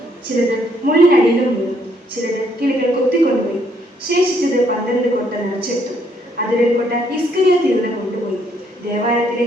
ചിലത് മുള്ളിനടിയിലും വീണു, ചിലത് കിളികൾ കൊത്തിക്കൊണ്ടുപോയി. ശേഷിച്ചത് 12 കൊട്ട നിറച്ചെടുത്തു. അതിൽ കൊട്ട ഇസ്കരിയോത്ത് യൂദൻ കൊണ്ടുപോയി. ദേവാലയത്തിലെ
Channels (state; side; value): normal; both; correlation 0.70